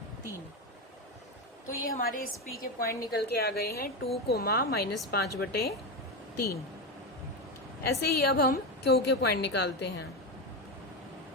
तो ये हमारे इस P के पॉइंट निकल के आ गए हैं 2, -5/3। ऐसे ही अब हम Q के पॉइंट निकालते हैं।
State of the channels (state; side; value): normal; both; correlation 0.15